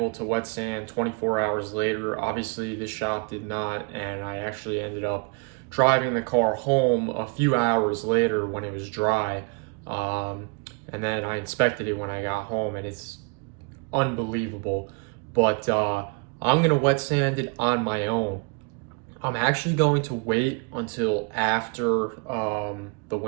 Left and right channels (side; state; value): left; quieter; 31.3 dB